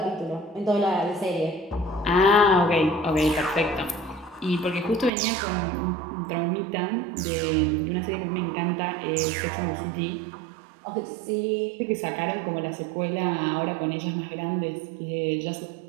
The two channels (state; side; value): drops out; left; at 5.1 s